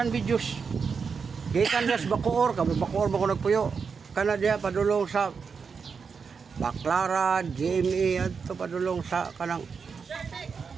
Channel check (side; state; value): left; quieter; 5.7 dB